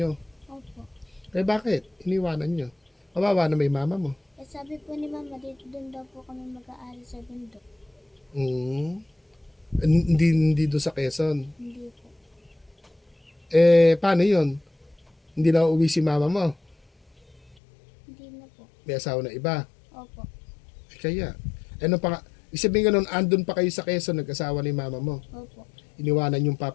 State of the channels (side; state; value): right; drops out; at 17.6 s